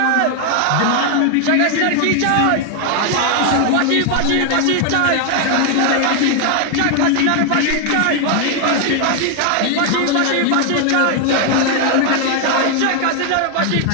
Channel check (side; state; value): both; different; correlation 0.00